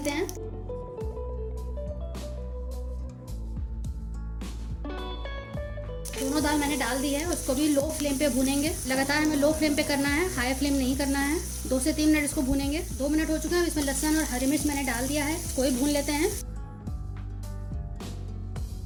हैं। दोनों दाल मैंने डाल दी है। उसको भी लो फ्लेम पे भूनेंगे। लगातार हमें लो फ्लेम पे करना है, हाई फ्लेम नहीं करना है। 2 से 3 मिनट इसको भूनेंगे। 2 मिनट हो चुके हैं। इसमें लहसुन और हरी मिर्च मैंने डाल दिया है, इसको भी भून लेते हैं।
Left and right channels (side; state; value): both; identical; correlation 1.00